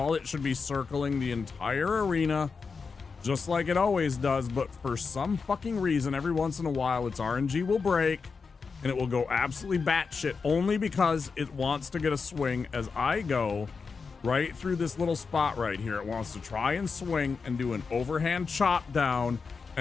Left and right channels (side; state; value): right; quieter; 5.0 dB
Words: It should be circling the entire arena just like it always does. But for some fucking reason, every once in a while, its RNG will break and it will go absolutely batshit only because it wants to get a swing as I go right through this little spot right here. It wants to try and swing and do an overhand chop down